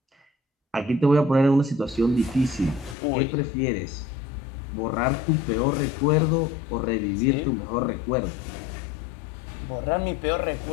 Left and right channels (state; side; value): drops out; right; at 3.0 s